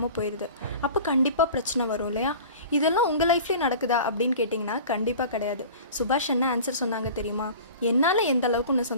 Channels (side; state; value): both; inverted; correlation -0.39